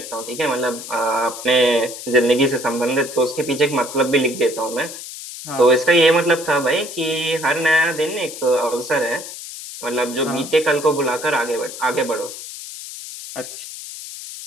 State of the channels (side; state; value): left; noise; hiss, 11 dB below the sound